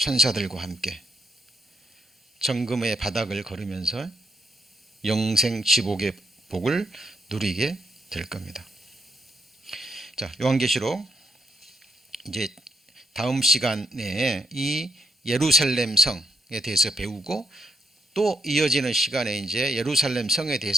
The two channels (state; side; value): normal; both; correlation 0.78